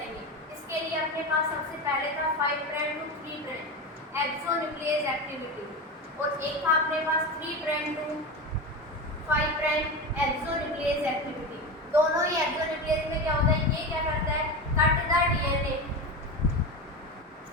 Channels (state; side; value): normal; both; correlation 0.22